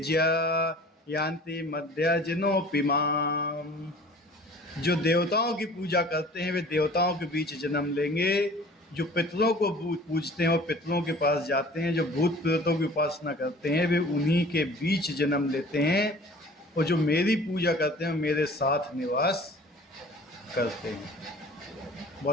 यान्ति मध्यजनोऽपि माम्। जो देवताओं की पूजा करते हैं वे देवताओं के बीच जन्म लेंगे। जो पितरों को पूजते हैं वो पितरों के पास जाते हैं। जो भूत प्रेतों की उपासना करते हैं वे उन्हीं के बीच जन्म लेते हैं। और जो मेरी पूजा करते हैं मेरे साथ निवास करते हैं।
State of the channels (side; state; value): both; normal; correlation 0.46